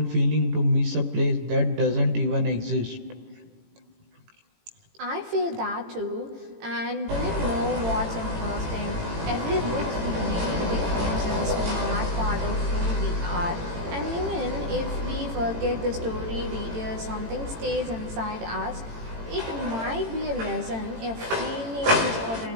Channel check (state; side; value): late; left; 18 ms